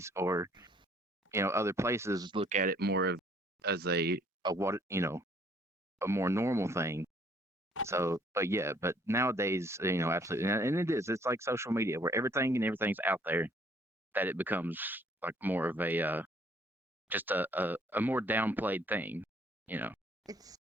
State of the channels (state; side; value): normal; both; correlation 0.62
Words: or other places, look at it more of as a more normal thing. So, but yeah, but nowadays, absolutely, and it is. It's like social media where everything's out there. that it becomes like more of a just a more downplayed thing, you know.